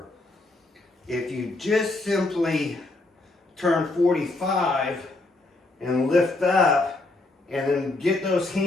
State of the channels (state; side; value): quieter; right; 3.0 dB